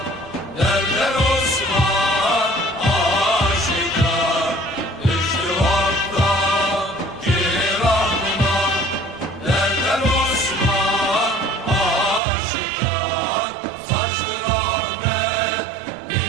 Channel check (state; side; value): drops out; left; at 12.2 s